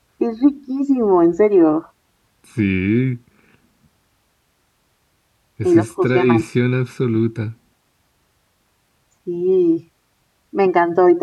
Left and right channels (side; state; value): both; identical; correlation 1.00